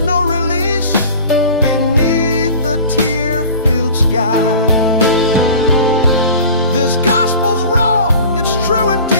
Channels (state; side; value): inverted; both; correlation -0.40